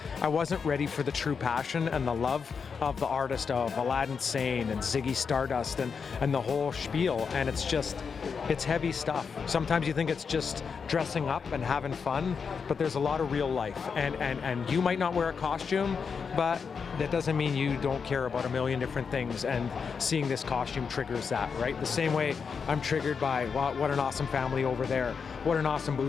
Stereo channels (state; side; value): quieter; right; 5.9 dB